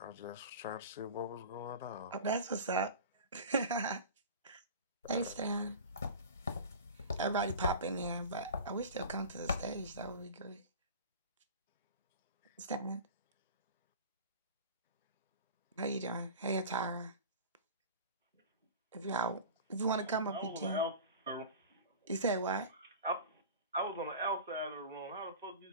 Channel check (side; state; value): both; inverted; correlation -0.36